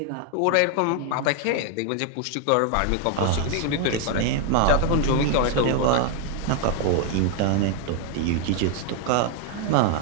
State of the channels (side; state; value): both; different; correlation 0.01